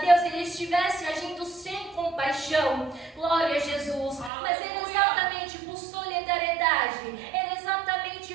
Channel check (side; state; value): left; drops out; at 4.3 s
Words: ele estivesse agindo sem compaixão. Glória a Jesus. Mas era exatamente por solidariedade, era exatamente